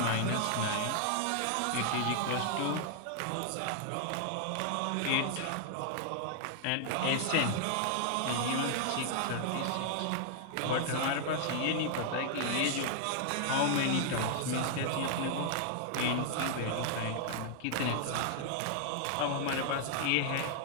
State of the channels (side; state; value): both; different; correlation -0.01